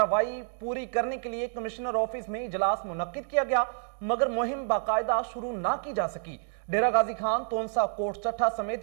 पूरी करने के लिए कमिश्नर ऑफिस में इजलास मुनक्किद किया गया, मगर मुहिम बाकायदा शुरू ना की जा सकी। डेरा गाजी खान, तोनसा, कोट चट्टा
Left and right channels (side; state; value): left; silent; 59 dB below the other